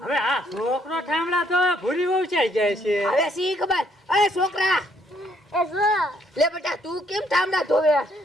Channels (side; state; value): both; normal; correlation 0.68